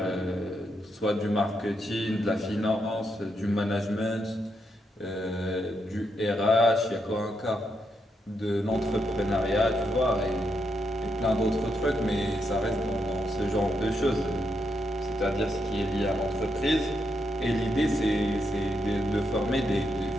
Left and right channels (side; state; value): both; normal; correlation 0.81